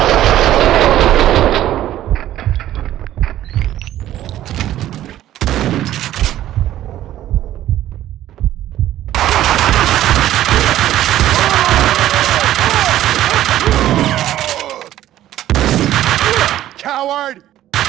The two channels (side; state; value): left; quieter; 13.1 dB